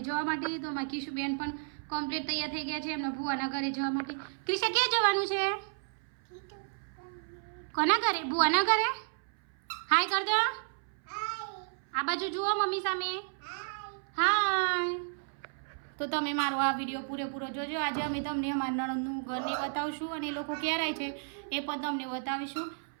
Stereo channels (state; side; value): silent; left; 56 dB below the other